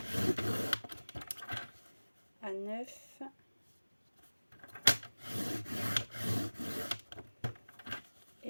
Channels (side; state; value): both; inverted; correlation -1.00